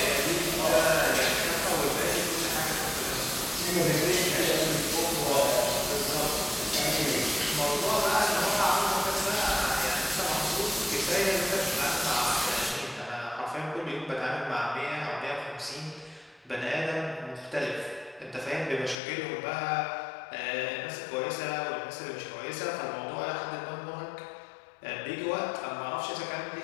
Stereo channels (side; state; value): right; drops out; at 18.9 s